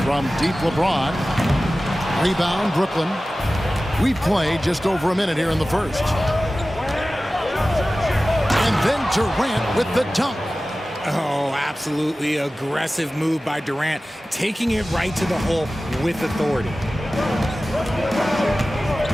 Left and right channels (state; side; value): normal; both; correlation 0.96